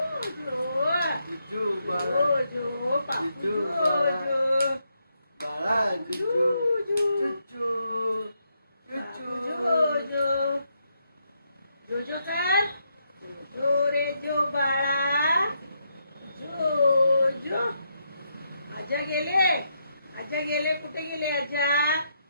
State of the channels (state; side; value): inverted; both; correlation -0.79